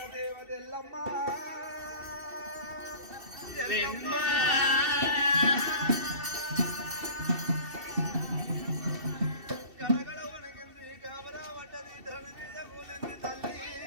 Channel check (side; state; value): left; late; 2.7 ms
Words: దేవదెల్లమ్మ గడగడ వణికింది గాబరా పడ్డది ధరణి మీద కూలింది తల్లి